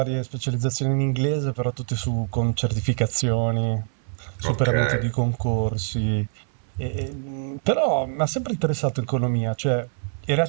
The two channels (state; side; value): silent; left; 62 dB below the other